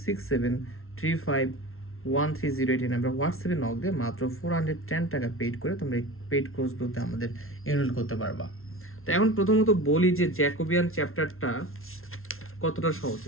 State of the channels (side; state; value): right; late; 0.62 ms